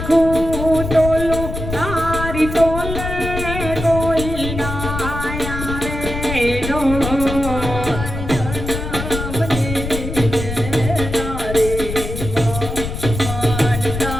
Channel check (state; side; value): noise; left; rumble, 6 dB below the sound